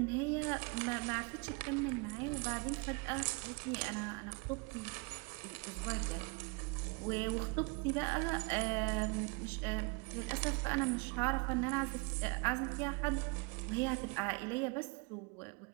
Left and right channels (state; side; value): quieter; left; 30.5 dB